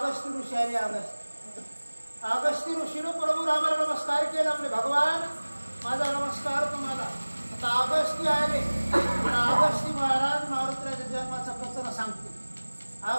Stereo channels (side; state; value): both; inverted; correlation -1.00